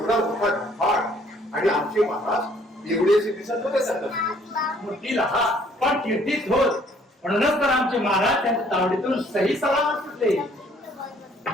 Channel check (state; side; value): normal; both; correlation 0.61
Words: मोठा घाट आणि आमचे महाराज एवढेचे दिसत होते. मूर्ती लहा पण कीर्तीच होत. म्हणूनच तर आमचे महाराज त्यांच्या तावडीतून सही सलामत सुटले.